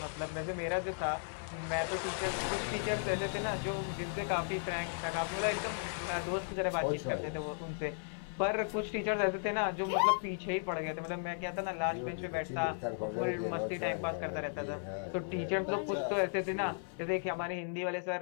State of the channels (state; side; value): silent; right; 54 dB below the other